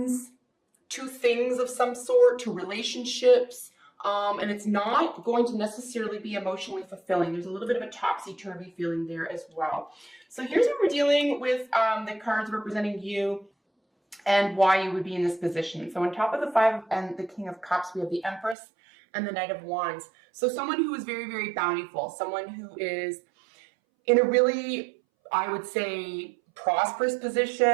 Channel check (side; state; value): left; drops out; at 18.6 s